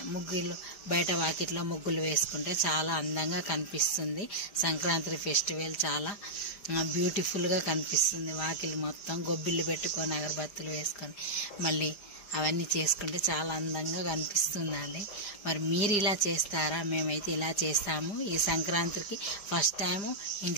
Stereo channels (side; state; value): right; late; 5.0 ms